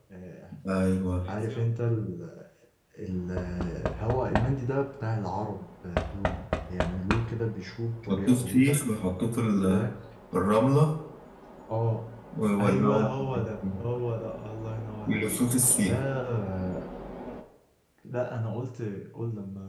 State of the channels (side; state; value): both; identical; correlation 1.00